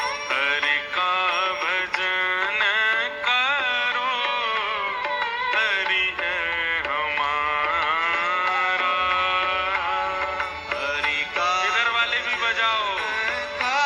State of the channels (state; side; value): identical; both; correlation 1.00